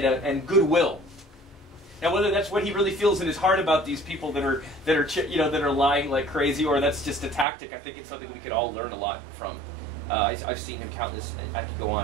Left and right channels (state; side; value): drops out; left; at 7.5 s